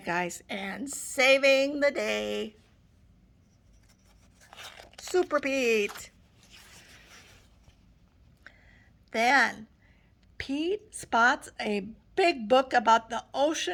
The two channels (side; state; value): both; identical; correlation 1.00